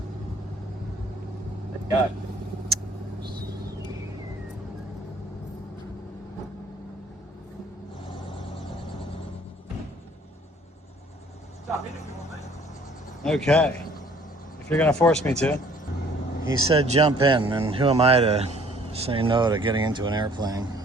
there you go. Okay, if you're gonna force me to. He said jump in, and who am I to say no to getting into an airplane?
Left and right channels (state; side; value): normal; both; correlation 0.57